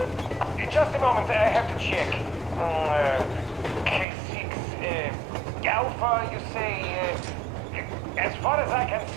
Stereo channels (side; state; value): left; drops out; at 4.0 s